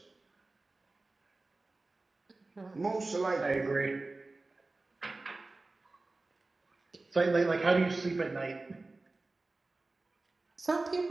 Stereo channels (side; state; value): left; quieter; 3.3 dB